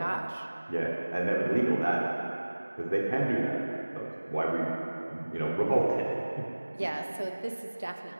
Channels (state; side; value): inverted; both; correlation -1.00